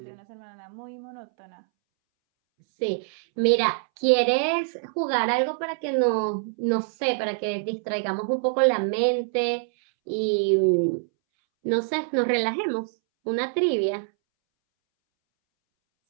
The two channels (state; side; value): silent; left; 62 dB below the other